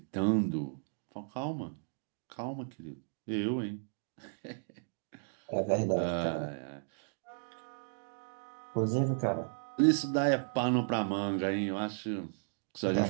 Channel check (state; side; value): silent; left; digital silence